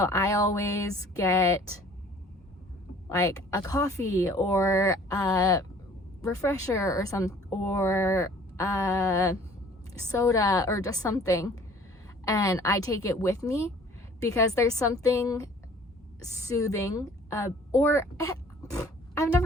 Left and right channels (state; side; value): normal; both; correlation 0.52